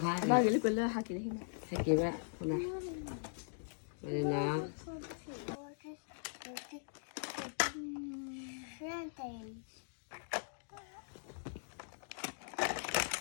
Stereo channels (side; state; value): right; silent; digital silence